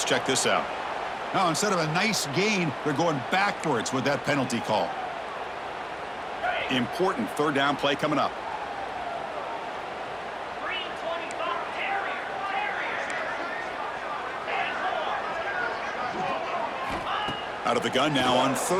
check this out. Now, instead of a nice gain, they're going backwards with that penalty call. Important 3rd down play coming up. Out of the gun now on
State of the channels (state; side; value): identical; both; correlation 1.00